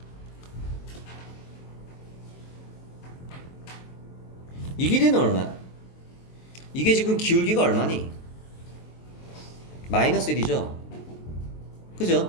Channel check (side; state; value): right; late; 23 ms